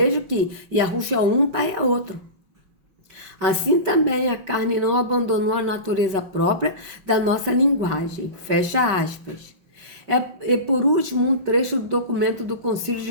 que Yahushua é um, Pai é outro. Assim também a carne não abandonou a natureza própria da nossa linguagem. Fecha aspas. E por último, um trecho do documento do Concílio de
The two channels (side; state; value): left; late; 5.2 ms